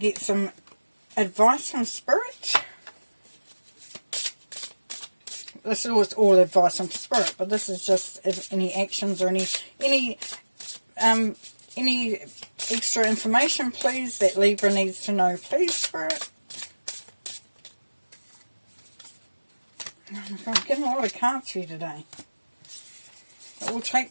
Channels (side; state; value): both; inverted; correlation -1.00